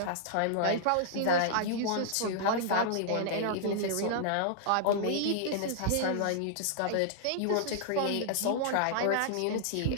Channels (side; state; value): both; different; correlation -0.01